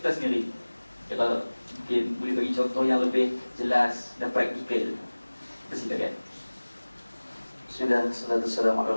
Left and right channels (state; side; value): inverted; both; correlation -1.00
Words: sendiri. Kalau mungkin boleh bagi contoh yang lebih jelas dan praktikal. Persilakan. Bismillah, salatu wassalamu ala